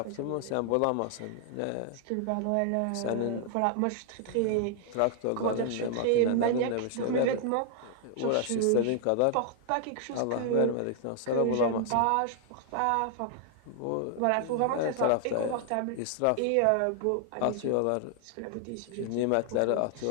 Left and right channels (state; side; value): different; both; correlation 0.00